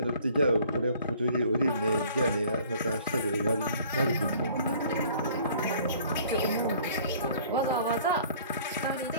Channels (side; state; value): both; inverted; correlation -0.53